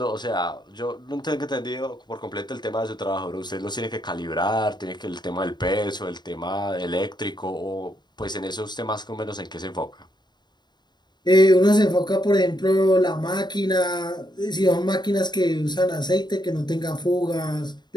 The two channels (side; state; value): right; late; 0.21 ms